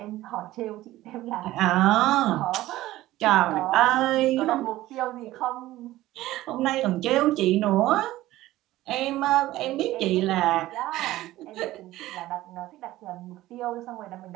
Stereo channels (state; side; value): quieter; left; 16.1 dB